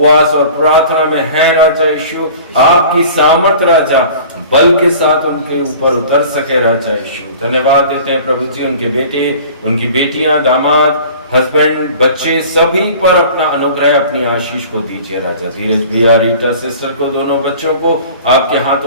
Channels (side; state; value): both; inverted; correlation -0.44